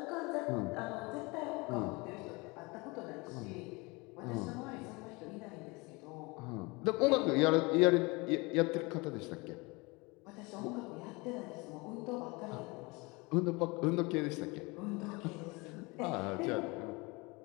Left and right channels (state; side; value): quieter; right; 25.9 dB